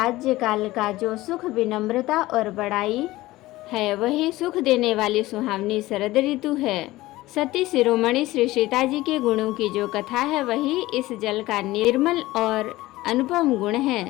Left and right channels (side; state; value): right; quieter; 17.9 dB